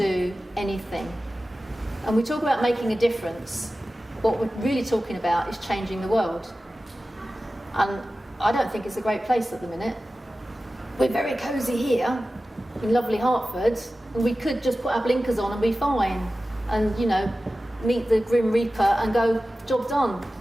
anything. And we talk about making a difference. What we're really talking about is changing the world. And I don't think it's a great place at the minute. We're very cosy here in lovely Hertford, and we could just put our blinkers on and be fine and, meet the Grim Reaper and go, job done.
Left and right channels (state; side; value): normal; both; correlation 0.95